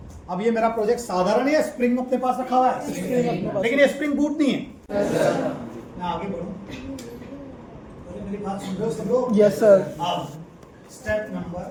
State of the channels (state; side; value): identical; both; correlation 1.00